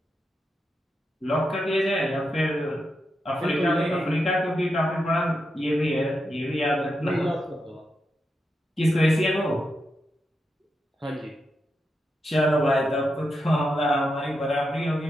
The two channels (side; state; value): both; normal; correlation 0.86